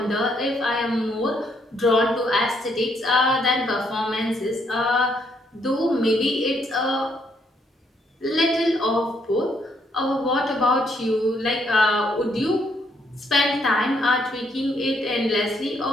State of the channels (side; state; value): both; normal; correlation 0.72